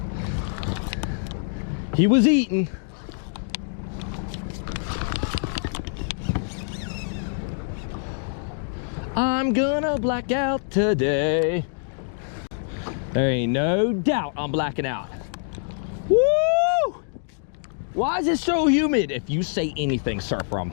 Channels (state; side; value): silent; right; digital silence